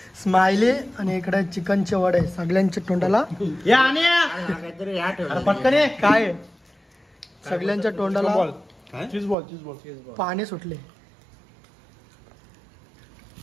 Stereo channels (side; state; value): left; drops out; at 9.3 s